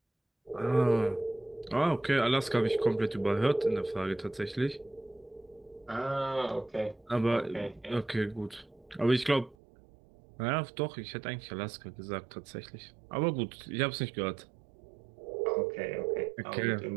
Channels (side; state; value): left; drops out; at 9.6 s